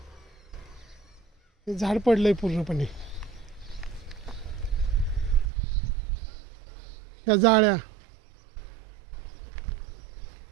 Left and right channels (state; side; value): drops out; left; at 5.5 s